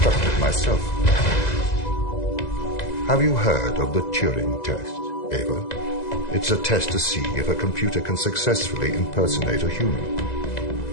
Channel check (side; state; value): right; late; 2.0 ms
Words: myself. Have you heard of the Turing Test, Ava? It's a test to see if a computer can successfully impersonate a human.